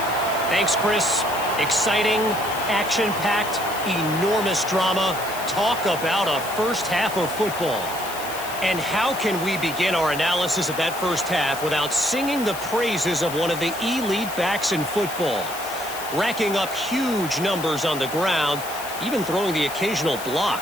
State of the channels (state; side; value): noise; left; hiss, 11 dB below the sound